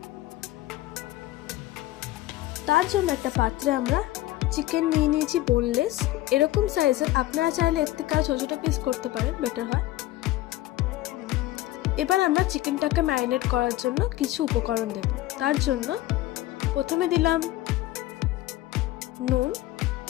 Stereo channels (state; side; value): quieter; right; 16.1 dB